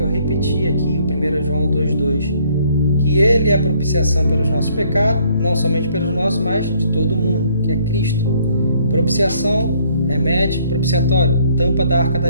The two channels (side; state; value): both; inverted; correlation -0.64